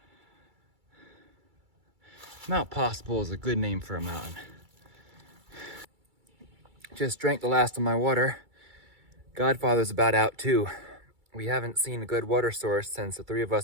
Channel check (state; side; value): late; left; 2.3 ms